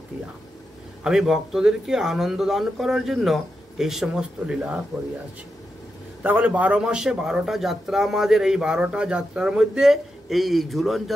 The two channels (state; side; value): normal; both; correlation 0.87